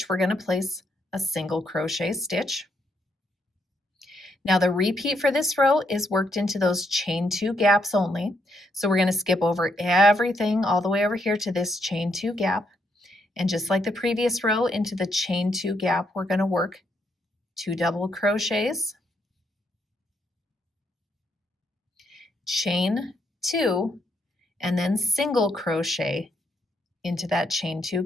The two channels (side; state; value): both; normal; correlation 0.77